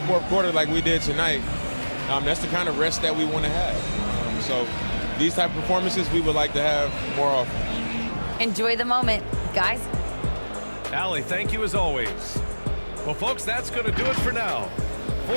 4th quarter like we did tonight, that's the kind of rest that we want to have. So these type of performances we would like to have more often. Enjoy the moment, guys. Allie, thank you as always. Well, folks, that's going to do it for now.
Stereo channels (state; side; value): inverted; both; correlation -1.00